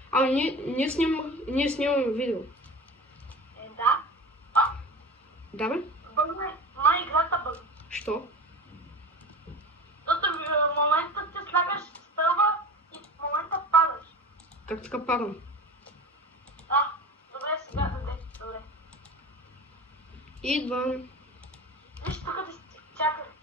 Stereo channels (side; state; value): both; normal; correlation 0.34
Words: Ние снимаме видео. Да. Да, бе? Бъгне. Май играта бъгне. Що? Защото в момента ти слагаш стълба и в момента падаш. Как така падам? Добре, сега даде. Добре. Идвам. Виж тук да си чакай.